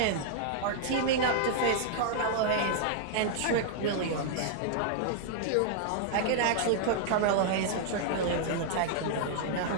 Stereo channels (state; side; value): different; both; correlation -0.01